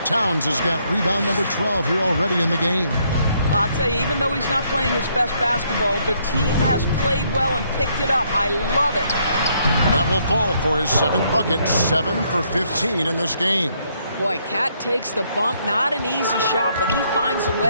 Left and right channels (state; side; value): inverted; both; correlation -0.71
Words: Towns has got rebound number 12 here already in the game. I'll tell you, even though he's not playing his best basketball, the team has played well and picked it up. I love it. That will fall for his 7th bucket. 7 for 15 in this game. Boy, Cat takes the bump. Not an easy shot, but he finds a